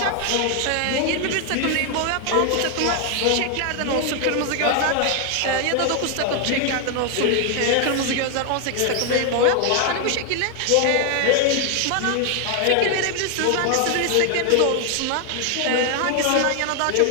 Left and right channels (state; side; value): different; both; correlation 0.00